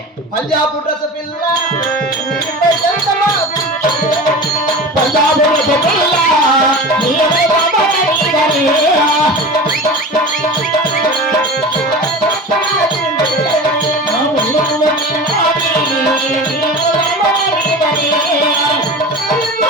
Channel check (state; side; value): normal; both; correlation 0.32